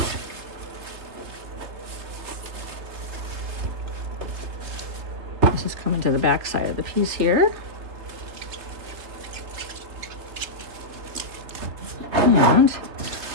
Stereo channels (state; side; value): late; left; 3.3 ms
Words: This is coming to the back side of the piece here. And